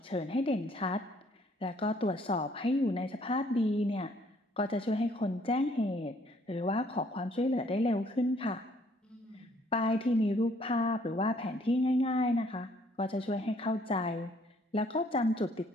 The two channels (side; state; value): both; normal; correlation 0.63